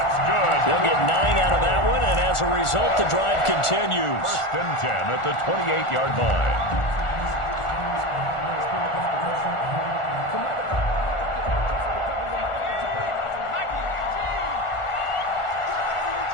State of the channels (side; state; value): right; late; 1.4 ms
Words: good. They'll get 9 out of that one, and as a result, the drive continues. 1st and 10 at the 28-yard line.